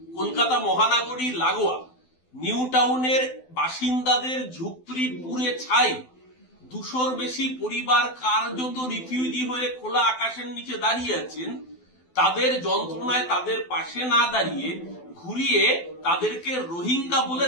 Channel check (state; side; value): late; right; 12 ms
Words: কলকাতা মহানগরী লাগোয়া নিউ টাউনের বাসিন্দাদের ঝুপড়ি পুড়ে ছাই, 200-র বেশি পরিবার কার্যত রিফিউজি হয়ে খোলা আকাশের নিচে দাঁড়িয়ে আছেন। তাদের যন্ত্রণায় তাদের পাশে না দাঁড়িয়ে ঘুরিয়ে তাদেরকে রোহিঙ্গা বলে